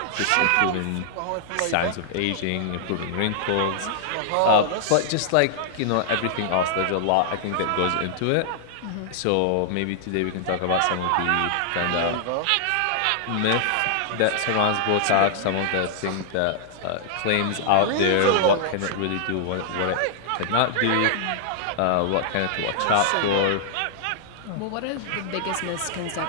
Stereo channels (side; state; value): both; different; correlation -0.01